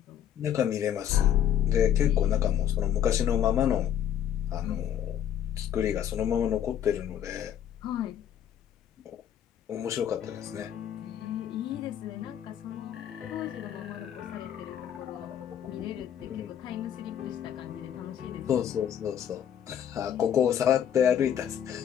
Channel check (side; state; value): right; quieter; 9.9 dB